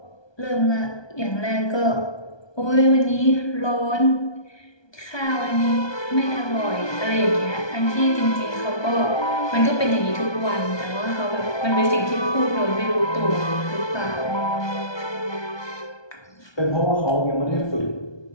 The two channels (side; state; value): right; late; 1.2 ms